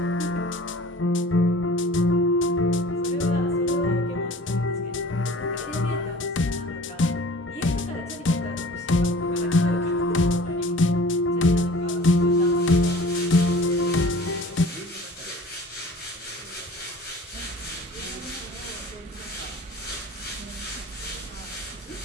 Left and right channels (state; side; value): normal; both; correlation 0.45